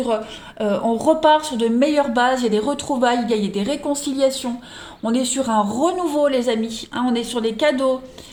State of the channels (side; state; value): both; identical; correlation 1.00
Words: on repart sur de meilleures bases, il y a des retrouvailles, il y a des réconciliations, on est sur un renouveau les amis, hein, on est sur des cadeaux,